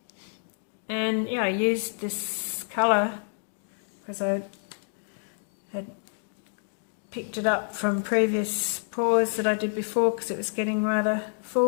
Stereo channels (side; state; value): right; silent; digital silence